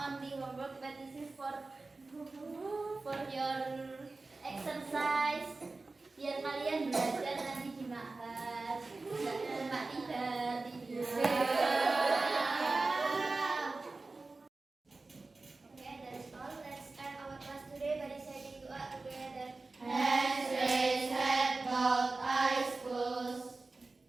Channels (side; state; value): left; quieter; 3.5 dB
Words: only homework, but this is for your exercise. Biar kalian belajar nanti di Ma'had, nggak cuma tidur. Okay, that's all. Let's end our class today by reciting doa together. Hands raised, head bowed, eyes closed.